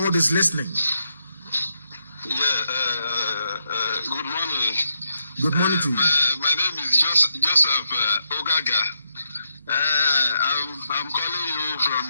is listening. Yeah, good morning. Good morning to you. My name is Joseph Ogaga. I'm calling you from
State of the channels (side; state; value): both; inverted; correlation -0.81